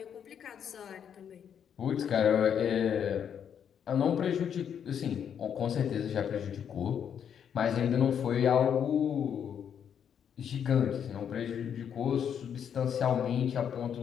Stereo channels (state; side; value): quieter; right; 8.3 dB